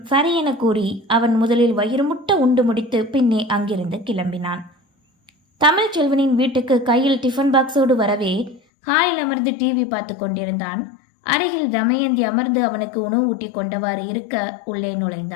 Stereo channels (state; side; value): drops out; right; at 8.6 s